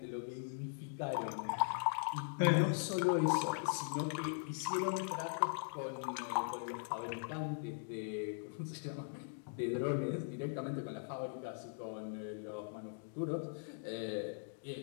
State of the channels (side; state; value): right; silent; digital silence